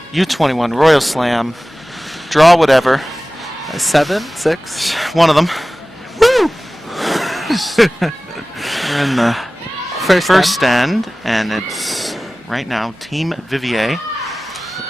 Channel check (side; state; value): both; normal; correlation 0.97